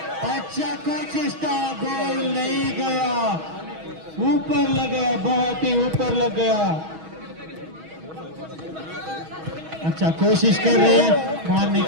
अच्छा कोशिश था, गोल नहीं गया, ऊपर लग गया, बहुत ही ऊपर लग गया। अच्छा कोशिश कर रहे हैं मारने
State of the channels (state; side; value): late; left; 6.3 ms